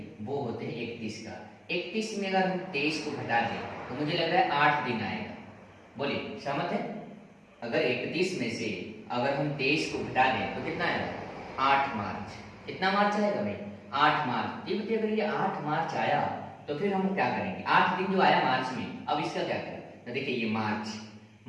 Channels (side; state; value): both; identical; correlation 1.00